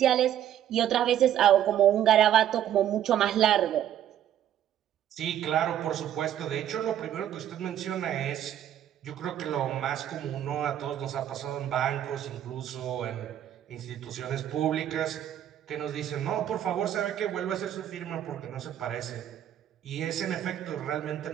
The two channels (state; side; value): quieter; left; 11.0 dB